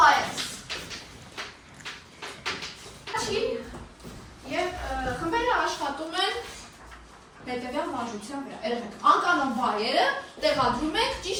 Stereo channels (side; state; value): both; identical; correlation 1.00